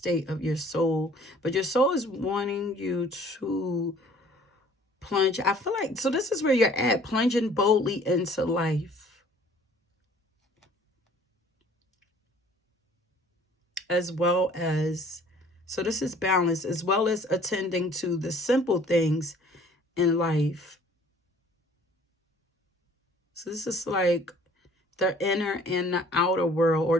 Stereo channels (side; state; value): both; normal; correlation 0.54